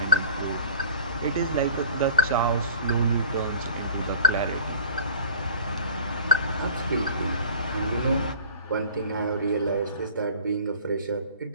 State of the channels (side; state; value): both; inverted; correlation -0.46